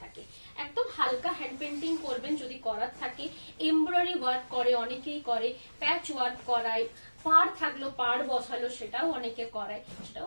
থাকে। একদম হালকা হ্যান্ড পেন্টিং করবেন যদি করার থাকে, এমব্রয়ডারি ওয়ার্ক করে অনেকেই করে, প্যাচ ওয়ার্ক করায়, পাড় থাকলো পাড় বসালো সেটাও অনেকে করায়, সেটাও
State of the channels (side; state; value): both; inverted; correlation -1.00